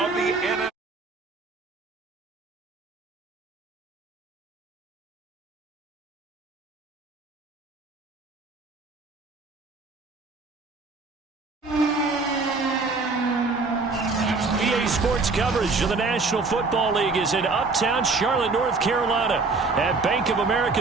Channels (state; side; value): quieter; left; 3.9 dB